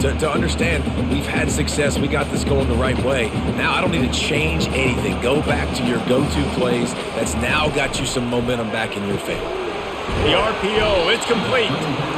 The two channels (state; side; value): identical; both; correlation 1.00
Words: understand we've had success, we got this going the right way. Now I don't need to change anything. Go back to your go-to plays. That's now got you some momentum back in your favor. The RPO, it's complete.